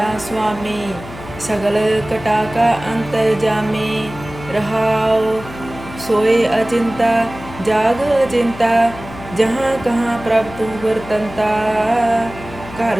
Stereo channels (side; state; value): left; noise; hum, 15 dB below the sound